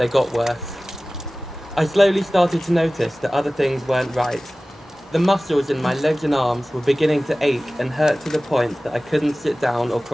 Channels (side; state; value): both; normal; correlation 0.97